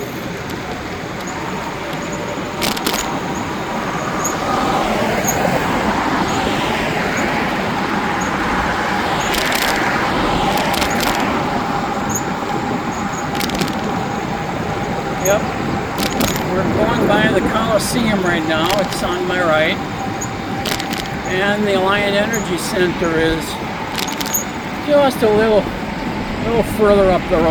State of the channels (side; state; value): both; identical; correlation 1.00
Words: Yep, we're going by the Coliseum right now. It's on my right. And the Alliant Energy Center is just a little further up the